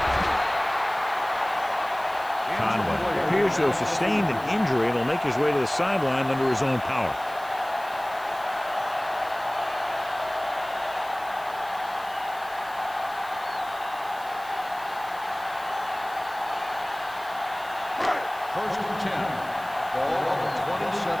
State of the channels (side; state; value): right; noise; hiss, 20 dB below the sound